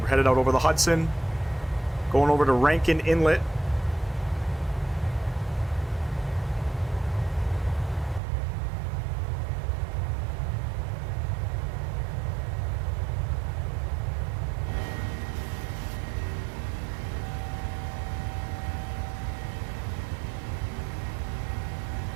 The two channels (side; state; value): left; drops out; at 8.2 s